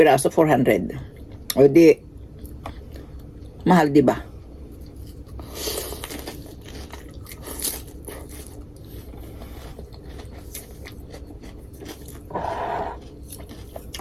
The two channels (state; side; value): identical; both; correlation 1.00